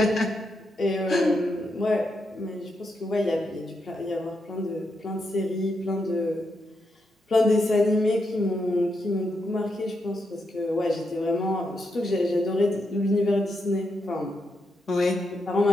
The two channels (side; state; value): both; normal; correlation 0.82